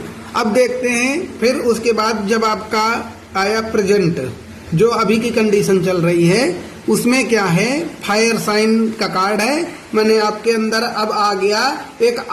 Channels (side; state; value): both; identical; correlation 1.00